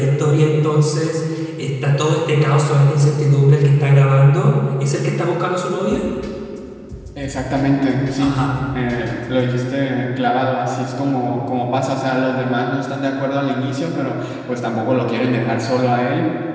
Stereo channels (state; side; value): identical; both; correlation 1.00